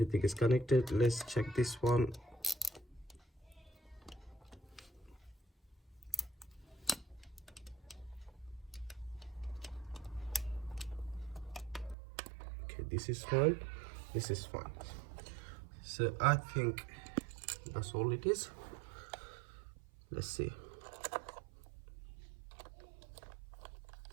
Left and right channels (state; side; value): drops out; left; at 12.0 s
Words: is connected. Let's check this one. Okay, this is fine, this is fine. So I think that's all it is. Let's see.